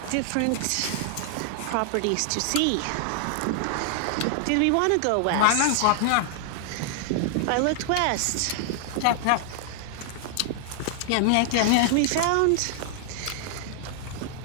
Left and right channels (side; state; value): both; different; correlation 0.00